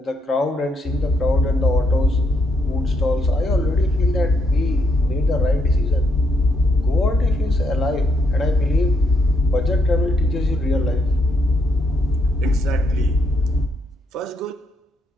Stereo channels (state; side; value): normal; both; correlation 0.76